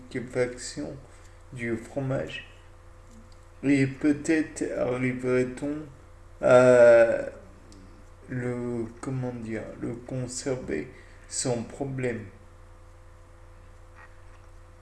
du fromage, et peut-être arriverait-on à le conserver sans problème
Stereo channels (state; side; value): identical; both; correlation 1.00